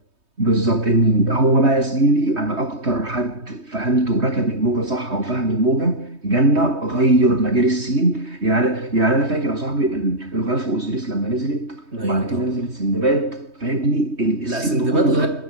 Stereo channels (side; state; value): left; late; 3.2 ms